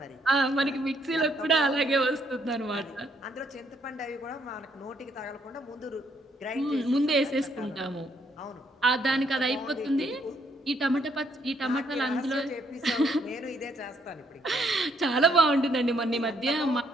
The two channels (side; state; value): both; normal; correlation 0.71